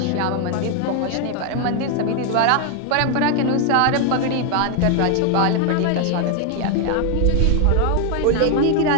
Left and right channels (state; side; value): different; both; correlation 0.00